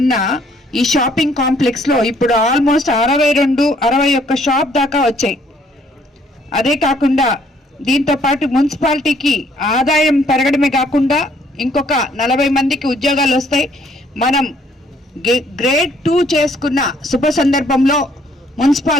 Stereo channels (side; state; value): both; normal; correlation 0.64